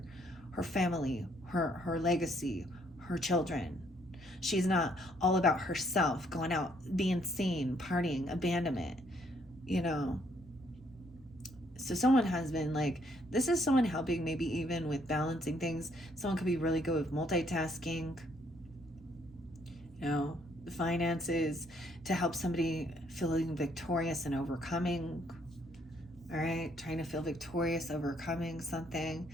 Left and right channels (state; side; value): normal; both; correlation 0.68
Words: family, her legacy, her children. She's not all about herself, going out, being seen, partying, abandonment, So someone has been like, this is someone helping maybe even with balancing things. Someone could be really good with multitasking, the finances, to help somebody feeling victorious and overcoming. All right, trying to feel victorious, overcoming something.